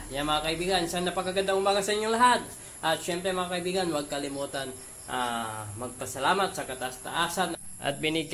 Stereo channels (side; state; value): both; identical; correlation 1.00